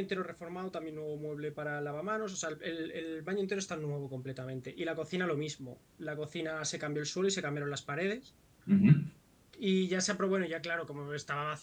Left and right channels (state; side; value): identical; both; correlation 1.00